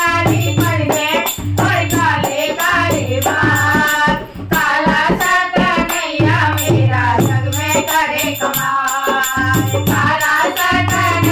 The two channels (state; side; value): identical; both; correlation 1.00